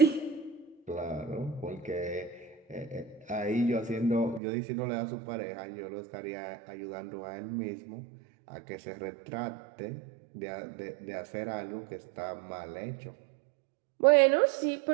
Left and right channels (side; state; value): left; drops out; at 4.4 s